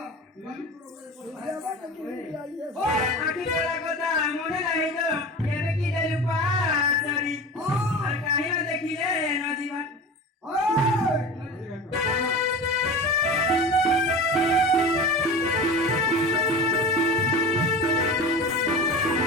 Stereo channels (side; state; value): both; normal; correlation 0.32